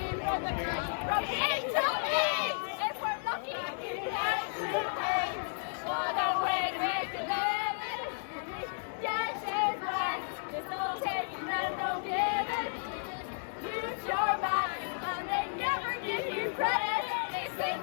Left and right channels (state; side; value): silent; right; digital silence